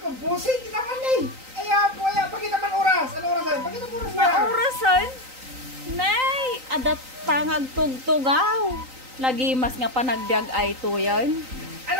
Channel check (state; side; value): late; left; 3.9 ms